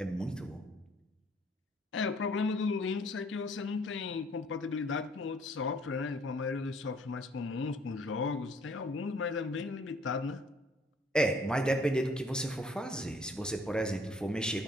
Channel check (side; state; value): both; normal; correlation 0.60